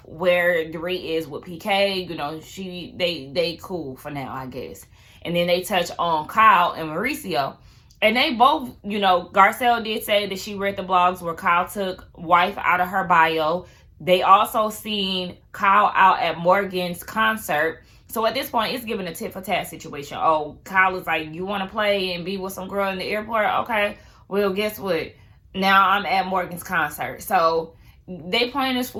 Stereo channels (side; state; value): both; identical; correlation 1.00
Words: where Dorit is with PK. You know, they cool for now, I guess. And then they touch on Kyle and Mauricio. And they both, you know, Garcel did say that she read the blogs where Kyle took wife out of her bio. They also seen Kyle out at Morgan's concert. So at this point, it's giving a tit for tat situation. Oh, Kyle is like, you want to play and be with some girl in the airport? Okay, well, guess what? Now I'm at Morgan's concert. So they playing this